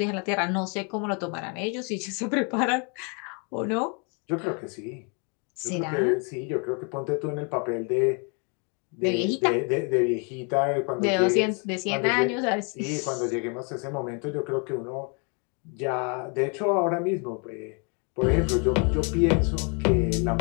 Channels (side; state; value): right; quieter; 35.9 dB